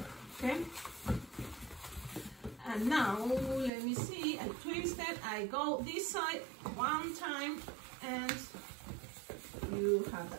okay, and now let me see, I twist it, I go this side 1 time, and you have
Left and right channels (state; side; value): drops out; left; at 3.7 s